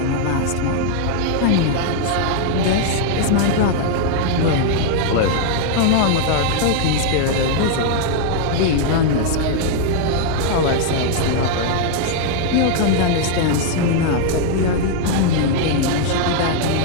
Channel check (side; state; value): both; different; correlation -0.01